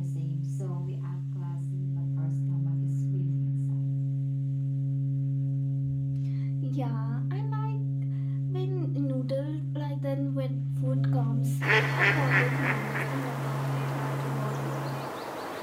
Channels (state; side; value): identical; both; correlation 1.00